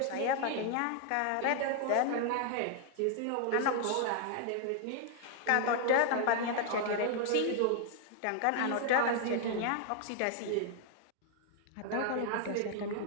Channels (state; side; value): different; both; correlation 0.00